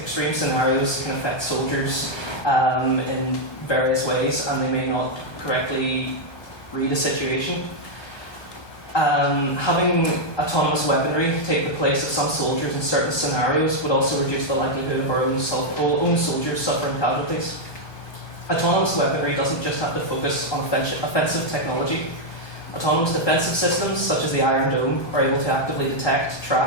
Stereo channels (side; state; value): right; late; 1.3 ms